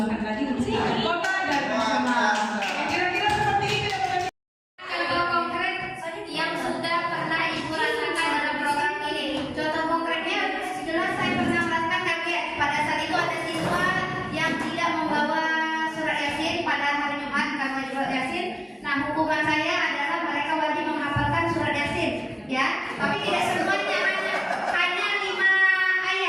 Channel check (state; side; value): identical; both; correlation 1.00